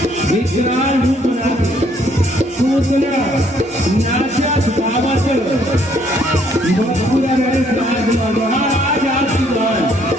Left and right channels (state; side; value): normal; both; correlation 0.66